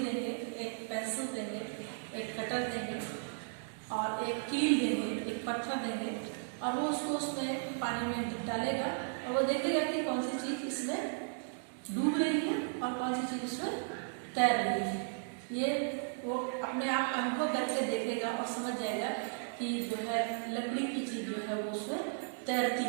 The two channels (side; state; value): left; silent; digital silence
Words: देंगे, एक पेंसिल देंगे, एक कटर देंगे और एक कील देंगे, एक पत्थर देंगे, और वो उसको उसमें पानी में डालेगा और वो देखेगा कि कौन सी चीज इसमें डूब रही है और कौन सी चीज उसमें तैर रही है। ये वो अपने आप अनुभव करके देखेगा और समझ जाएगा कि जो है लकड़ी की चीज जो है वो उसमें तैरती